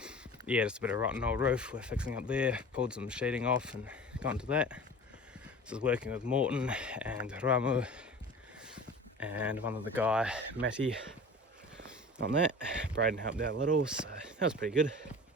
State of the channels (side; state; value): both; normal; correlation 0.38